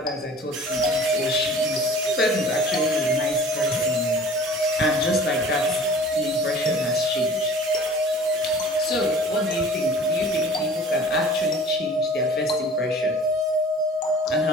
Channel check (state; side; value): normal; both; correlation 0.46